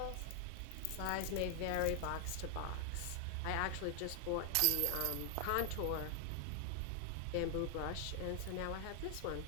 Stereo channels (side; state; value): both; different; correlation 0.00